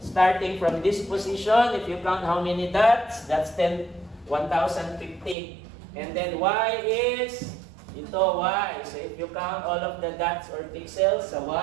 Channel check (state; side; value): drops out; left; at 5.4 s